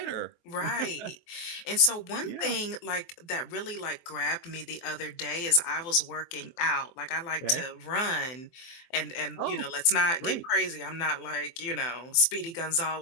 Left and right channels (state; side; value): late; right; 23 ms